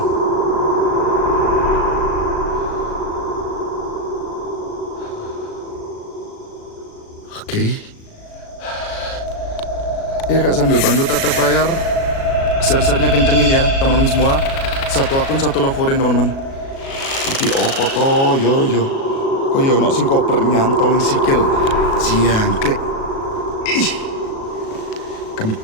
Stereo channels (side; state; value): right; late; 37 ms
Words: Oke. Ya kak, sambil bantu tatap layar. Share-share-nya kencengin ya teman-teman semua. Satu akun, satu lovorin teman-teman. Iki opo to, yo. Koyo ono sing koper nyantol ning sikil. Jangkrik. Ih.